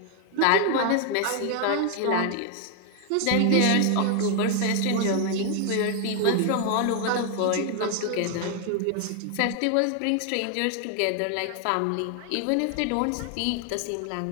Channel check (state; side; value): different; both; correlation 0.01